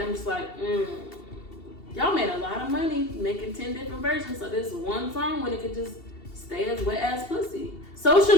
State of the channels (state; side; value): late; right; 2.7 ms